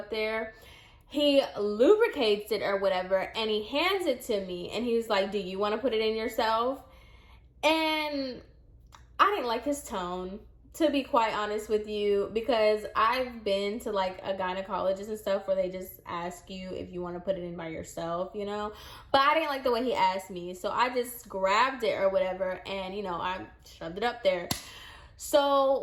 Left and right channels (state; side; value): identical; both; correlation 1.00